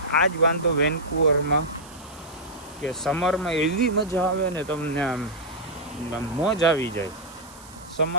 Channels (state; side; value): noise; right; hiss, 21 dB below the sound